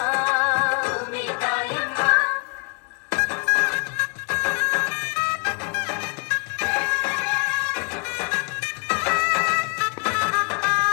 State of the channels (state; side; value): quieter; right; 35.3 dB